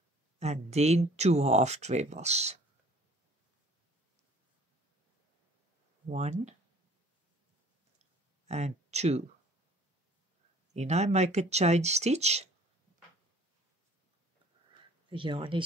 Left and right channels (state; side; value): normal; both; correlation 0.53